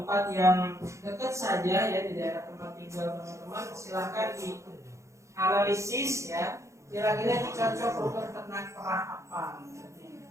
yang dekat saja ya di daerah tempat tinggal teman-teman. Silahkan dianalisis ya, kira-kira ini cocok untuk ternak perah apa.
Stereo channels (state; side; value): late; left; 0.14 ms